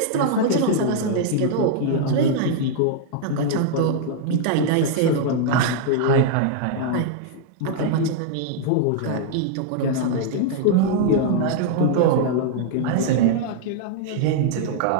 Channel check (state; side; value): different; both; correlation -0.01